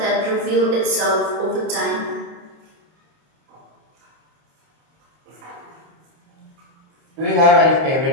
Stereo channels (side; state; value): left; late; 28 ms